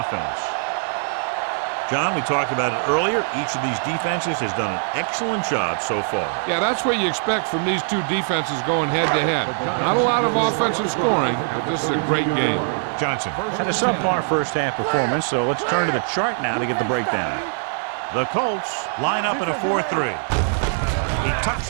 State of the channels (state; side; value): silent; left; 62 dB below the other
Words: John, we talked about it earlier. Each of these defenses has done an excellent job so far. Yeah, that's what you expect from these two defenses going head-to-head. Not a lot of offensive scoring, but this is a great game. Johnson. Had a subpar first half performance, so let's turn to the chart now to get the breakdown. The Colts line up in a 4-3. He tucks